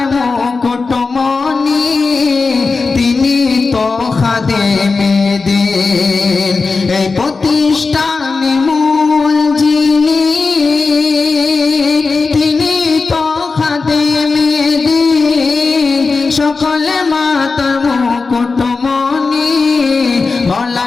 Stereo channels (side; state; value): right; quieter; 4.2 dB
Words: মুকুটমণি তিনি তো খাদেমে দিন এই প্রতিষ্ঠানে মূল যিনি তিনি তো খাদেমে দিন সকলে মাতার মুকুটমণি